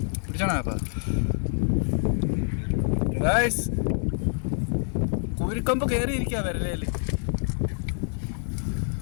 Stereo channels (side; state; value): right; silent; 61 dB below the other